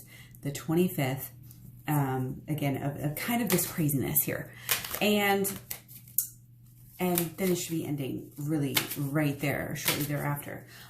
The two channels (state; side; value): identical; both; correlation 1.00